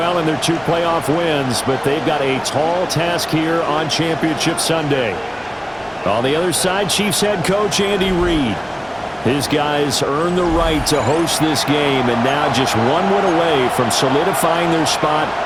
in their 2 playoff wins, but they've got a tall task here on Championship Sunday. On the other side, Chiefs head coach Andy Reid. His guys earned the right to host this game, and now just 1 win away from solidifying their spot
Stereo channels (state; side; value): identical; both; correlation 1.00